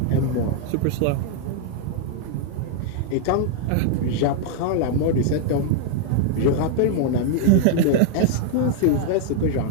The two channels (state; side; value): different; both; correlation 0.00